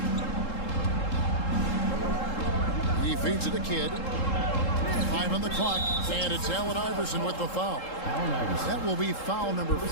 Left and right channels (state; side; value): late; right; 3.7 ms